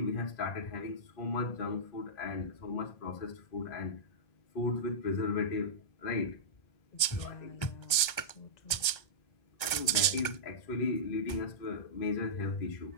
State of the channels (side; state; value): right; late; 1.3 ms